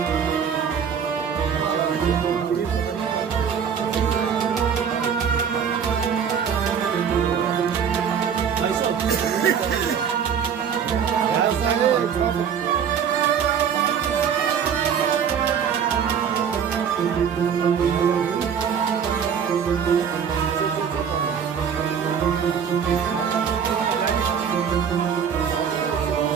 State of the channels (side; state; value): left; quieter; 7.5 dB